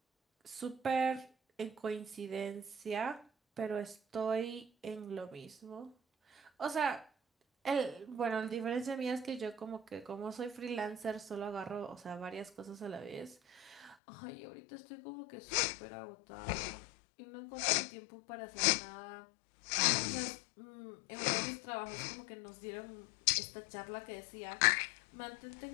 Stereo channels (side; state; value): right; drops out; at 14.0 s